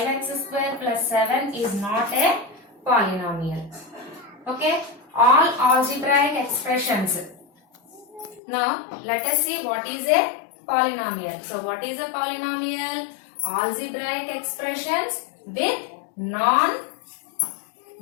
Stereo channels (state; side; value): drops out; right; at 8.4 s